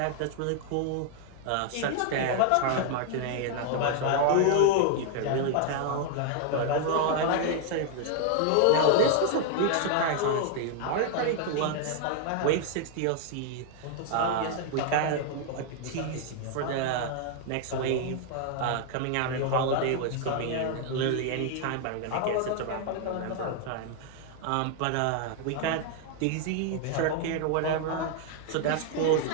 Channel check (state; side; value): different; both; correlation 0.00